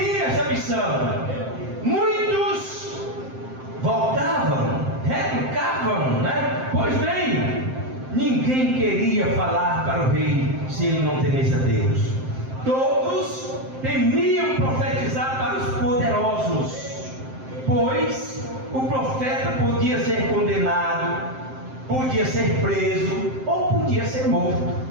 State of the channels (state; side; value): late; left; 7.7 ms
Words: essa missão. Muitos voltavam, retrucavam, né? Pois bem, ninguém queria falar para o rei se ele não temesse a Deus. Todos temiam profetizar para os poderosos, pois o profeta podia ser condenado, podia ser preso ou podia ser morto,